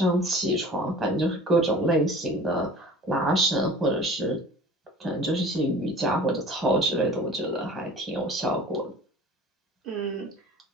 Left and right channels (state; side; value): normal; both; correlation 0.42